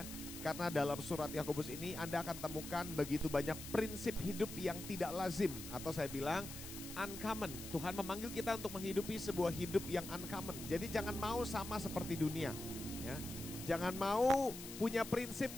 Karena dalam surat Yakobus ini Anda akan temukan begitu banyak prinsip hidup yang tidak lazim, atau saya bilang uncommon. Tuhan memanggil kita untuk menghidupi sebuah hidup yang uncommon. Jadi jangan mau sama seperti dunia, ya. Jangan mau punya prinsip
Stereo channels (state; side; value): noise; left; hiss, 11 dB below the sound